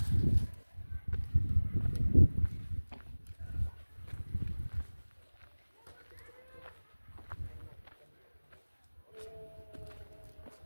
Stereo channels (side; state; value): both; inverted; correlation -1.00